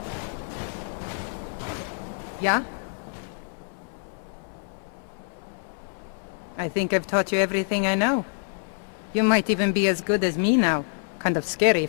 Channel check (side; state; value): right; silent; 60 dB below the other